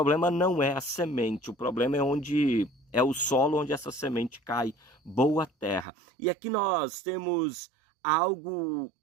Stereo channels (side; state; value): left; drops out; at 5.9 s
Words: não é a semente, o problema é o solo onde essa semente cai, boa terra. E aqui nós temos algo